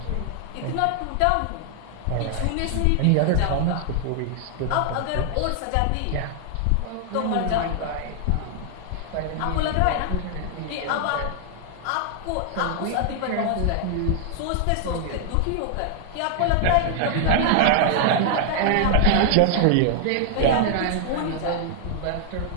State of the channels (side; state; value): both; different; correlation 0.00